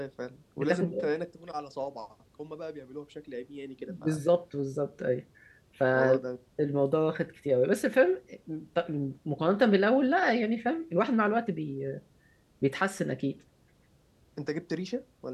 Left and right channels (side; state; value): both; identical; correlation 1.00